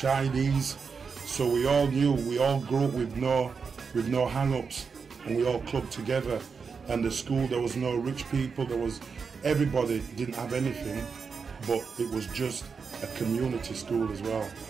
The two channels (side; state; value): left; quieter; 5.5 dB